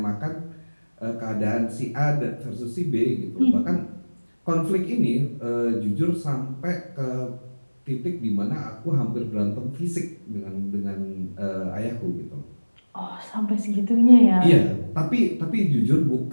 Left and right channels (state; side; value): inverted; both; correlation -1.00